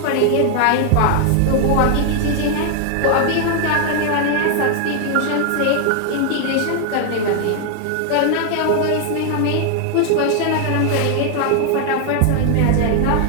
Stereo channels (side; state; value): both; different; correlation 0.00